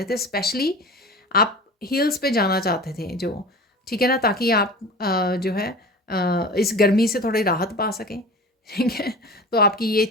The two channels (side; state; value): both; normal; correlation 0.36